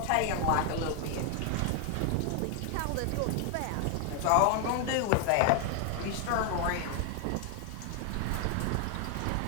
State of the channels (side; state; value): both; different; correlation 0.00